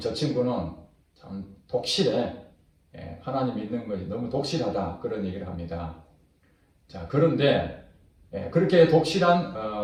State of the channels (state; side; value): identical; both; correlation 1.00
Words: 친구는 참 독실해. 하나님 믿는 것이 너무 독실하다 그런 얘기를 합니다. 자, 그런데 그렇게